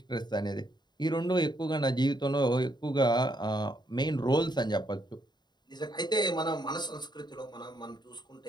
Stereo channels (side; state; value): right; late; 0.21 ms